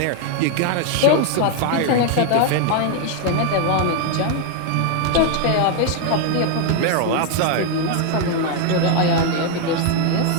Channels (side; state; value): both; different; correlation 0.00